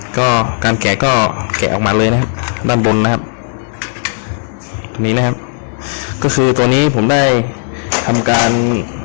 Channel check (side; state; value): right; silent; digital silence